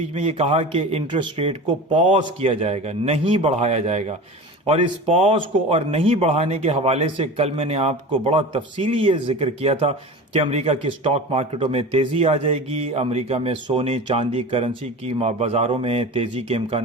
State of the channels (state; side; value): normal; both; correlation 0.32